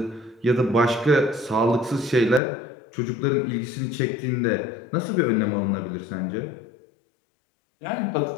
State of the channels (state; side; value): drops out; right; at 2.4 s